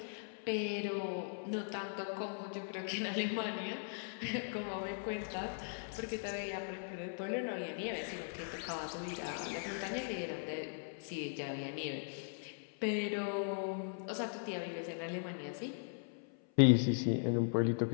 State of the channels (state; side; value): silent; right; 52 dB below the other